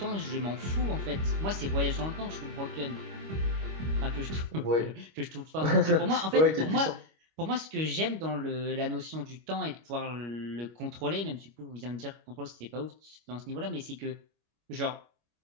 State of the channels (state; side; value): late; left; 25 ms